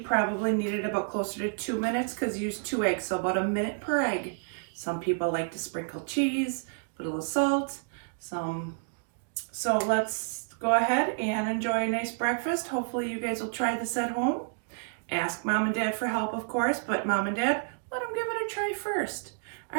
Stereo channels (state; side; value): silent; left; digital silence